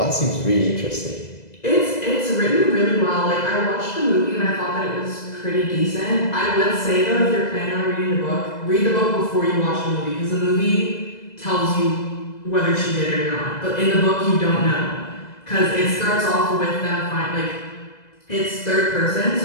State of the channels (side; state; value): right; late; 2.0 ms